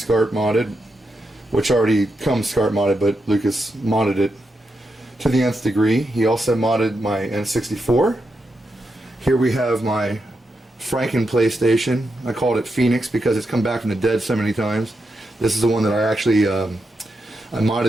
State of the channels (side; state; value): both; normal; correlation 0.85